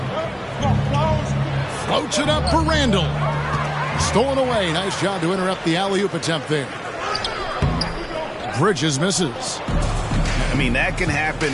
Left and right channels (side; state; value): both; identical; correlation 1.00